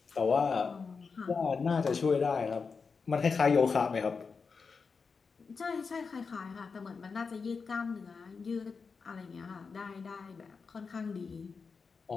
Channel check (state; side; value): quieter; right; 5.1 dB